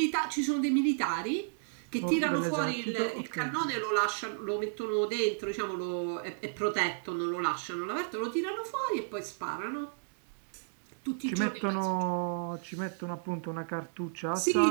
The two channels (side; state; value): left; silent; digital silence